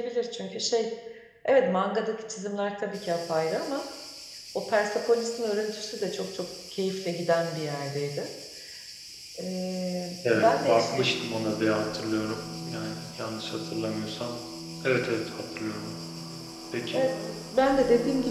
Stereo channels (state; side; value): identical; both; correlation 1.00